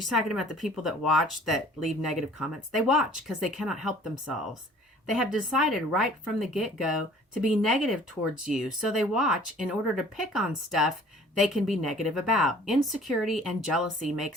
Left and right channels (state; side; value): normal; both; correlation 0.51